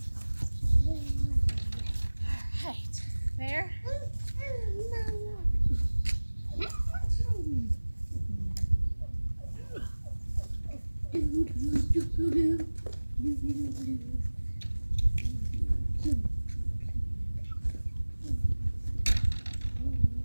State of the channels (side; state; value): both; inverted; correlation -1.00